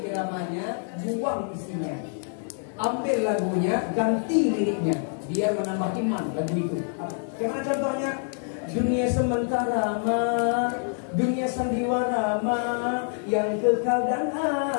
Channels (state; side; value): silent; right; 55 dB below the other